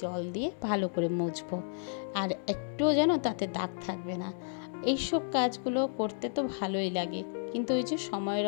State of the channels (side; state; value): right; silent; digital silence